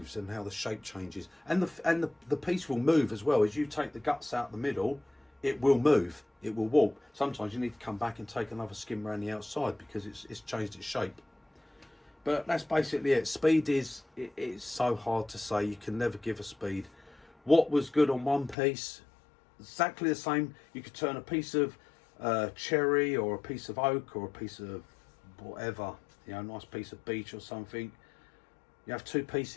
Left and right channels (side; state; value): right; drops out; at 18.6 s